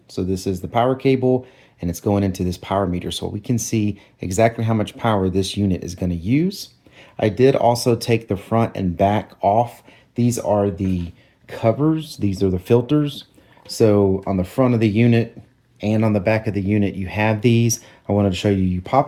So this is the power cable and it's going into this power meter so we can see exactly how much power this unit is going to use. I did also take the front and back off. These are the covers. These are the filters. So on the front of the unit and on the back of the unit, you have these. I wanted to show you, you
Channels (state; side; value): identical; both; correlation 1.00